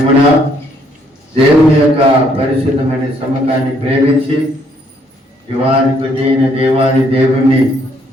దేవుని యొక్క పరిశుద్ధమైన సమ్మకాన్ని ప్రేమించి యువానికి అయిన దేవాది దేవుణ్ణి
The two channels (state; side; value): normal; both; correlation 0.68